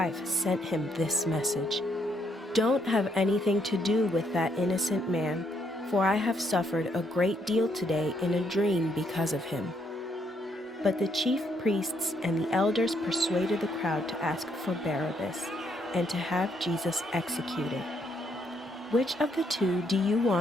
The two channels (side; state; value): both; normal; correlation 0.73